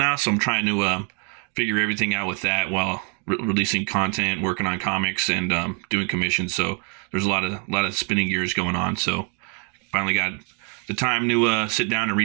so I'm trying to figure everything out with that while releasing content, working on comics, and doing commissions. So there's a lot of spinning gears going on. So finally got the time to sit down and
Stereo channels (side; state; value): left; quieter; 38.8 dB